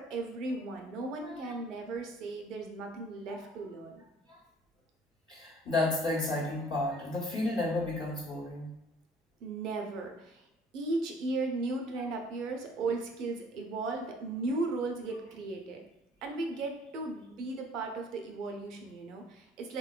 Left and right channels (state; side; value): normal; both; correlation 0.55